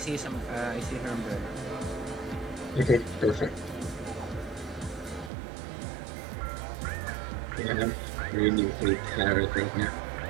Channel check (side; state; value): left; drops out; at 5.3 s